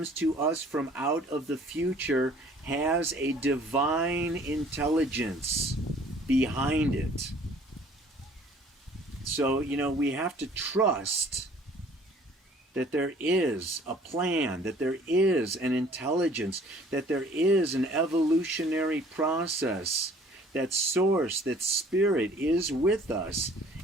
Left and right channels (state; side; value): normal; both; correlation 0.54